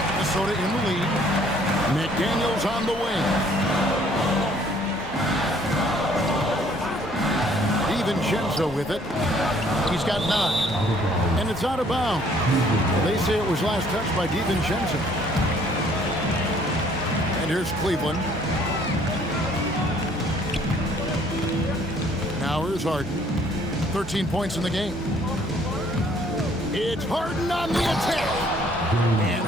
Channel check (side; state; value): both; normal; correlation 0.60